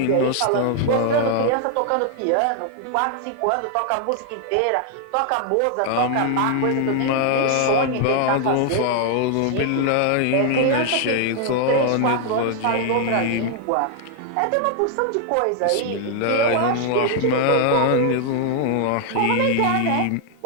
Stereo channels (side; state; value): both; different; correlation 0.00